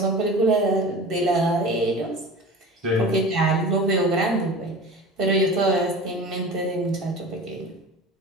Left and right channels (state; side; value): normal; both; correlation 0.36